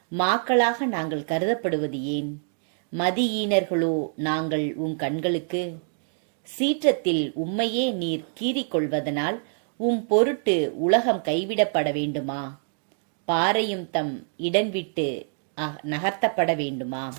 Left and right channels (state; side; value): silent; left; 61 dB below the other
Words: மாக்களாக நாங்கள் கருதப்படுவது ஏன்? மதியீனர்களோ நாங்கள் உம் கண்களுக்கு? சீற்றத்தில் உம்மையே நீர் கீறிக்கொள்வதனால் உம் பொருட்டு உலகம் கைவிடப்பட வேண்டுமா? பாறையும் தம் இடம் விட்டு நகர்த்தப்பட வேண்டுமா?